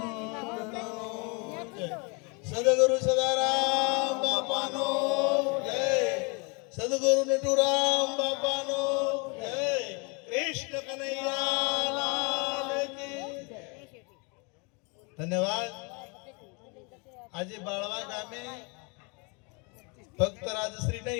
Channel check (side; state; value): right; quieter; 32.0 dB